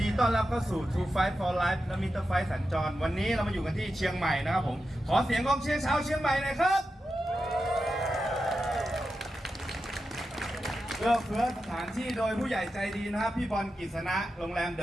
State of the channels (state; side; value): normal; both; correlation 0.90